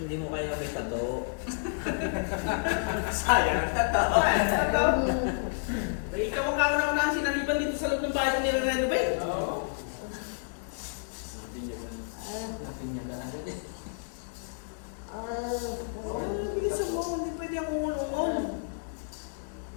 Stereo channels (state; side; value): silent; right; 57 dB below the other